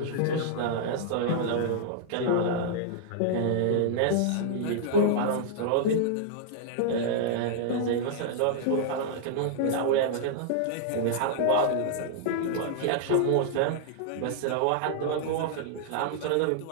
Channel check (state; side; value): different; both; correlation -0.01